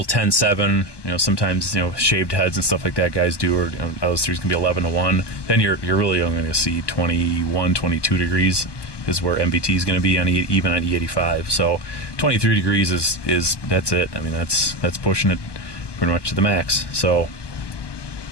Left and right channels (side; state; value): right; late; 1.2 ms